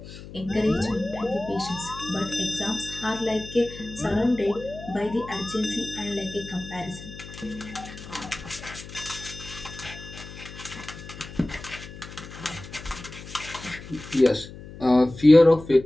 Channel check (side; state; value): left; noise; hum, 14 dB below the sound